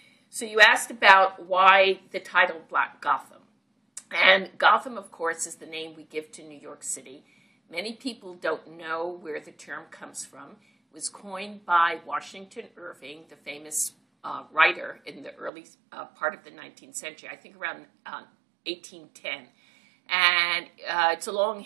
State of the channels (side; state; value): left; drops out; at 15.5 s